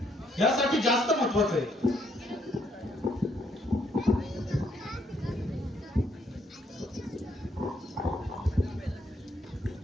यासाठी जास्त महत्वाचं आहे.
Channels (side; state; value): both; normal; correlation 0.71